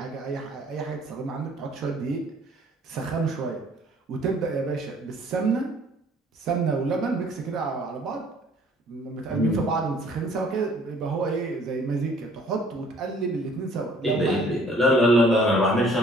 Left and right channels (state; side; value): normal; both; correlation 0.57